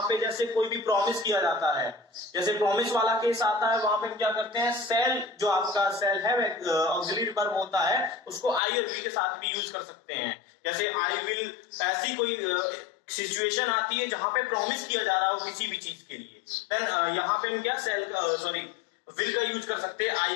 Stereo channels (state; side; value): drops out; right; at 8.6 s